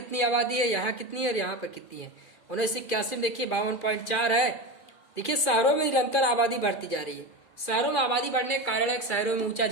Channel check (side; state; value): right; late; 2.4 ms